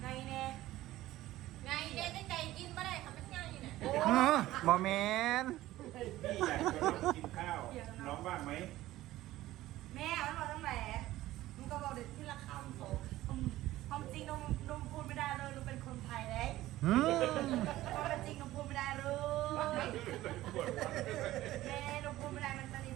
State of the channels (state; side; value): quieter; left; 15.8 dB